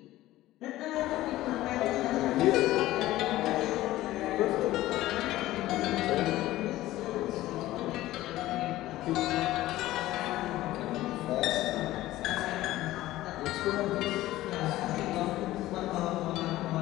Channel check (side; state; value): right; quieter; 16.0 dB